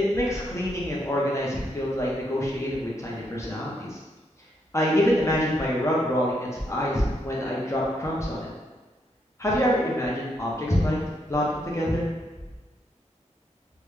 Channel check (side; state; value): both; normal; correlation 0.77